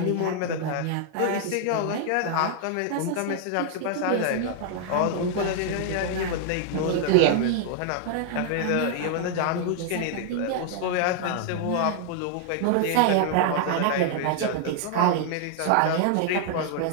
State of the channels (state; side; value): different; both; correlation 0.00